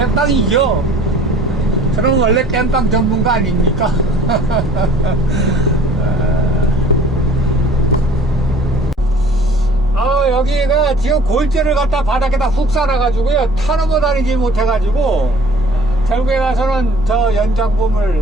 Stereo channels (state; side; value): normal; both; correlation 0.51